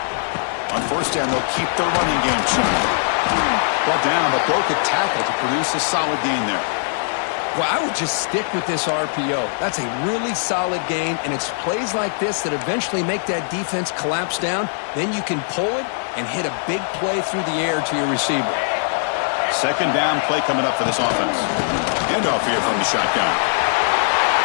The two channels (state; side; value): silent; right; digital silence